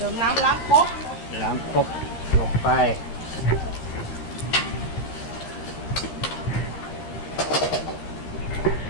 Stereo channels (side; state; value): right; late; 13 ms